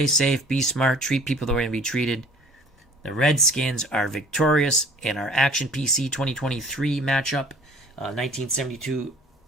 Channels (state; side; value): normal; both; correlation 0.52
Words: safe, be smart, treat people the way they be treated. The Redskins are victorious in our Action PC 2023 matchup, 1972